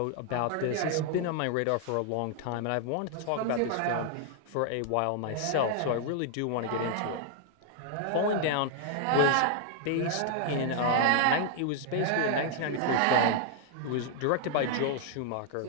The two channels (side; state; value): both; different; correlation 0.00